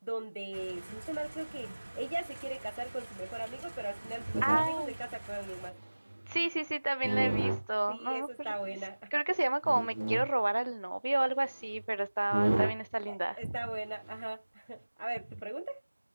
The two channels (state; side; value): inverted; both; correlation -1.00